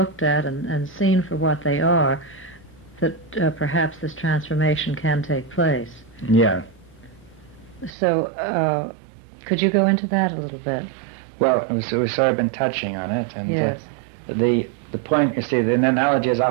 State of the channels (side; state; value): left; drops out; at 8.0 s